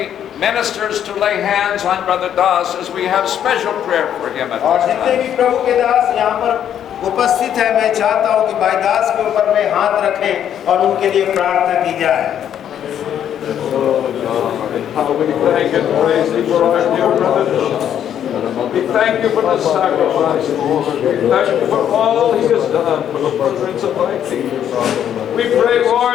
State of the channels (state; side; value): quieter; right; 9.7 dB